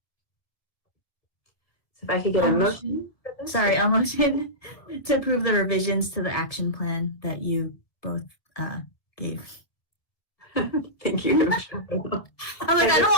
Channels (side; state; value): right; late; 1.6 ms